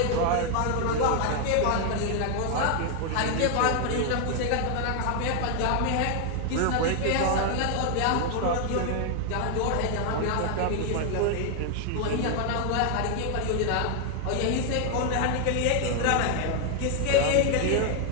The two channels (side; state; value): both; different; correlation 0.00